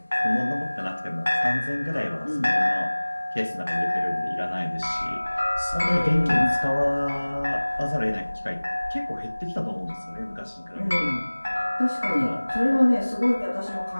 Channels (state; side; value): inverted; both; correlation -1.00